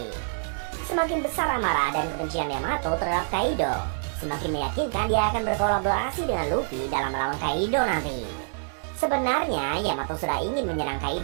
Semakin besar amarah dan kebencian Yamato terhadap Kaido, semakin meyakinkan dia akan berkolaborasi dengan Luffy dalam melawan Kaido nanti. Sebenarnya Yamato sudah ingin menyerang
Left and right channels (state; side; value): silent; left; digital silence